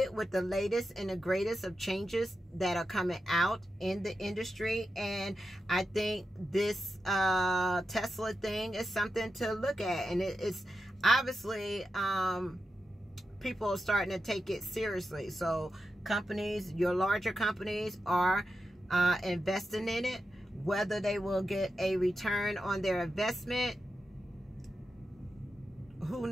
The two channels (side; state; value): both; normal; correlation 0.89